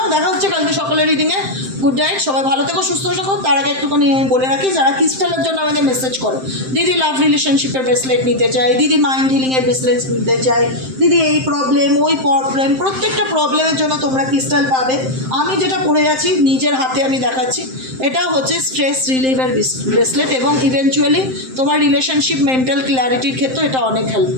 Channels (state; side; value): late; left; 7.7 ms